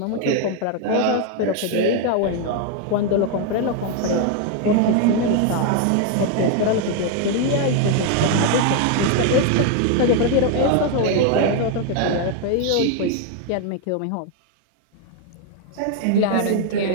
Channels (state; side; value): different; both; correlation 0.01